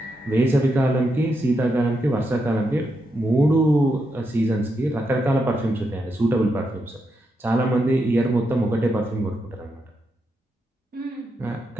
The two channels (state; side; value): normal; both; correlation 0.83